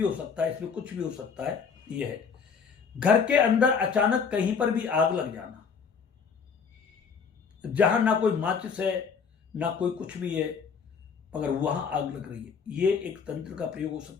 हो सकता है। इसमें कुछ भी हो सकता है। ये है घर के अंदर अचानक कहीं पर भी आग लग जाना, जहां ना कोई माचिस है ना कोई कुछ भी है, मगर वहां आग लग रही है, ये एक तंत्र का प्रयोग हो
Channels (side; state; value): right; quieter; 6.0 dB